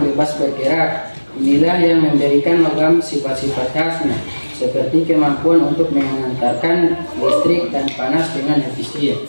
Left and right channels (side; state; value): both; inverted; correlation -1.00